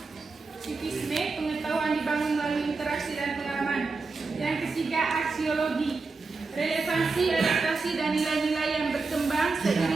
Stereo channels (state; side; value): quieter; left; 4.1 dB